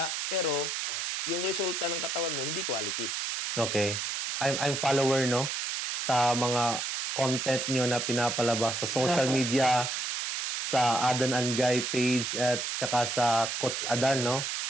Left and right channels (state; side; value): noise; right; hiss, 2 dB below the sound